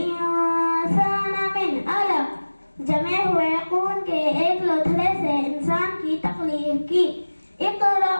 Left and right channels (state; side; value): inverted; both; correlation -1.00